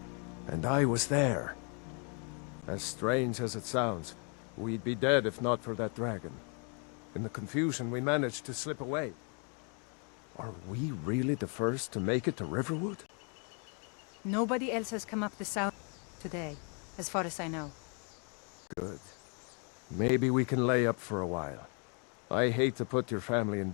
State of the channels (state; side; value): quieter; right; 38.1 dB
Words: And I was there. As strange as it sounds, we'd be dead if not for that dragon. In the confusion, we managed to slip away. Are we really the first to make it to Riverwood? Nobody else has come up the south today, as far as I know. Good. Maybe we can lay up for a while. I hate to put your family in